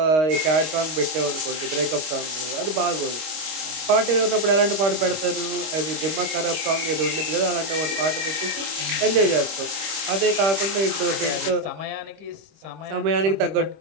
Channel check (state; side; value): late; left; 26 ms